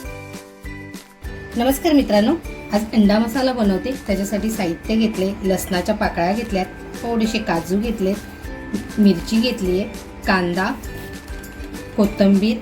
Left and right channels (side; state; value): both; identical; correlation 1.00